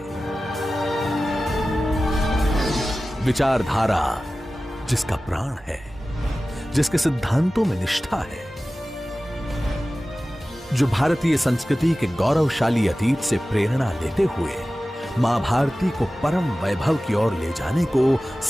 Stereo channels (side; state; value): both; normal; correlation 0.96